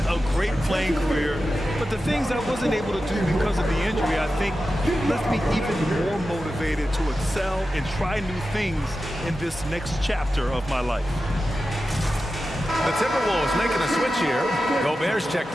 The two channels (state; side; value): normal; both; correlation 0.92